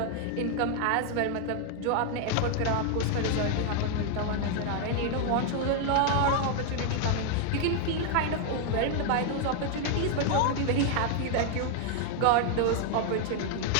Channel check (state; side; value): different; both; correlation 0.00